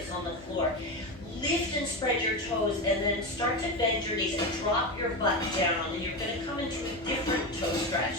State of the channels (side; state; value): both; normal; correlation 0.17